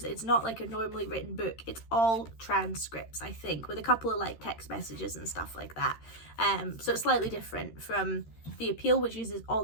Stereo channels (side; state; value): right; late; 13 ms